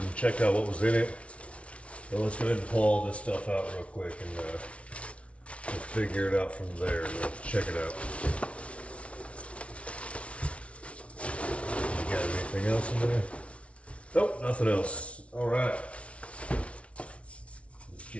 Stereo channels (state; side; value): late; right; 0.062 ms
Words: checked out what was in it. So let's go ahead and pull all this stuff out real quick and we'll figure it out from there. Let's check it out. You got anything else in there? Nope, nothing else. All right. Let's